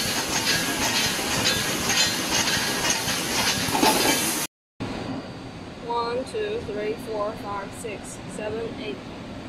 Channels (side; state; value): both; identical; correlation 1.00